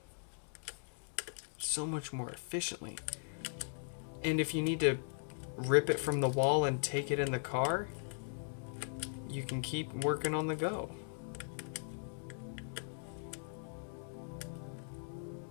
So much more efficiently. And if you need to rip it from the wall and take it in the car, you can keep working on the go.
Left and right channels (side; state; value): right; silent; digital silence